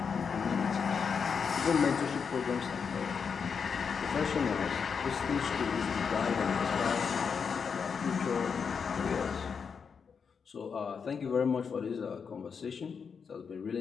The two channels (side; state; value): right; quieter; 6.1 dB